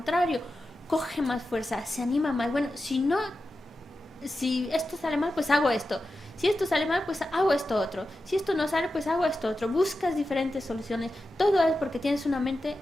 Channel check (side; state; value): both; normal; correlation 0.91